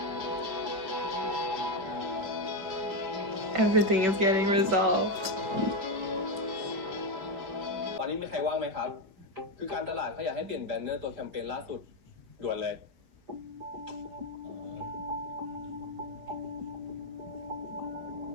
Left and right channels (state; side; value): late; left; 5.5 ms